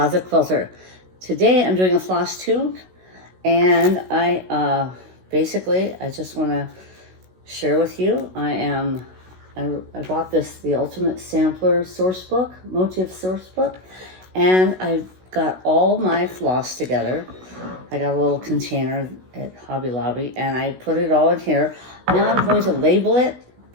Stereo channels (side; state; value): left; late; 16 ms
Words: Quilter. Today I'm doing a floss tube and I just want to share with you. I bought the Ultimate Sampler source book, motif source book, and I got all my floss together. I got a little container at Hobby Lobby and I put it all in here. Now I'm going to label it,